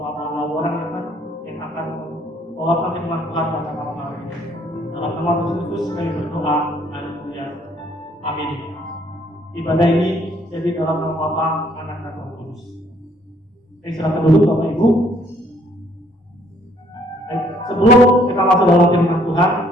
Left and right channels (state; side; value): normal; both; correlation 0.64